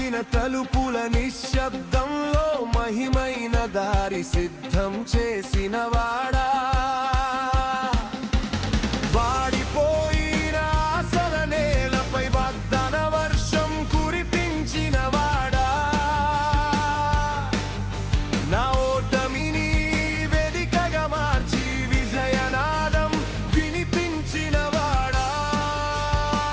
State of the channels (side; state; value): both; identical; correlation 1.00